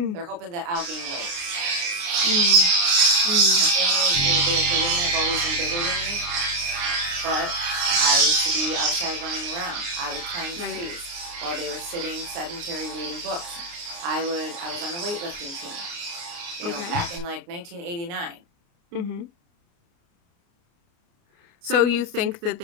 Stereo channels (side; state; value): left; late; 29 ms